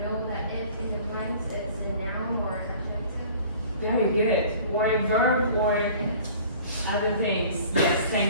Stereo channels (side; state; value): both; inverted; correlation -0.48